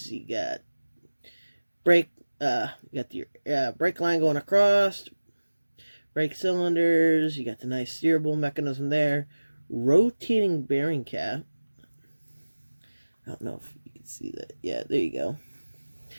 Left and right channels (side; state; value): both; inverted; correlation -1.00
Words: You got brake line going across. Brake cylinders. You got the nice steerable mechanism there. Rotating bearing cap. I don't know if you can see that. Yeah, there you go.